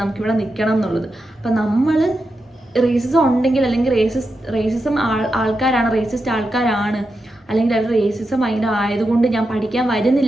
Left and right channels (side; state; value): both; normal; correlation 0.88